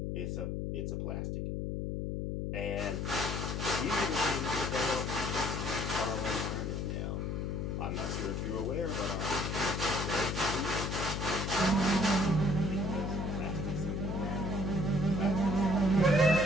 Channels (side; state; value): left; noise; hum, 2 dB below the sound